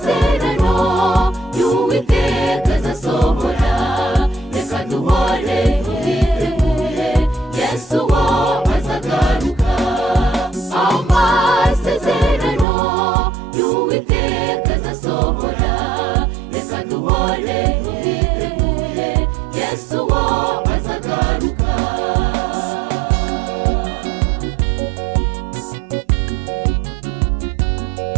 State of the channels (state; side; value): drops out; left; at 12.7 s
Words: y'Uwiteka azasohora, reka duhore twiteguye, Yesu wo azagaruka. Amasezerano y'Uwiteka azasohora, reka duhore twiteguye, Yesu wo azagaruka.